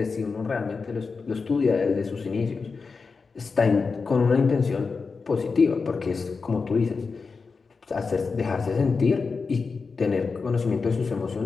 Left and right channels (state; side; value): quieter; right; 4.7 dB